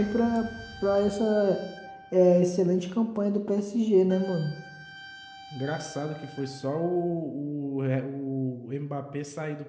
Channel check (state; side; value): identical; both; correlation 1.00